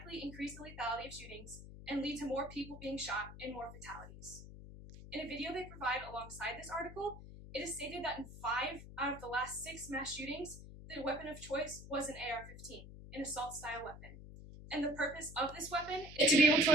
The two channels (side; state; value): left; noise; hum, 14 dB below the sound